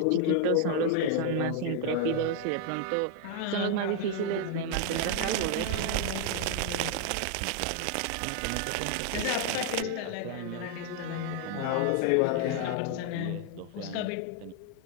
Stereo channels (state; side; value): different; both; correlation 0.00